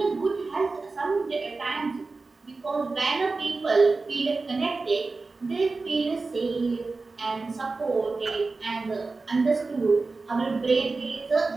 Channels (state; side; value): quieter; left; 3.8 dB